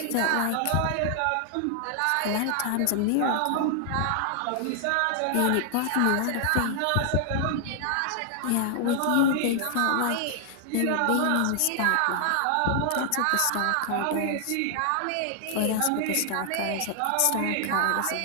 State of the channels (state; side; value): different; both; correlation 0.00